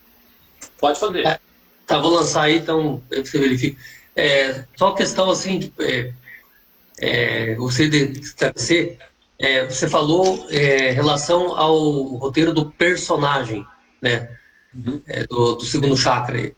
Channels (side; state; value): both; identical; correlation 1.00